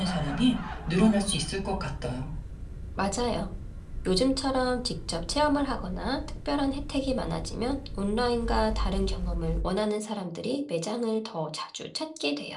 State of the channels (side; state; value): both; identical; correlation 1.00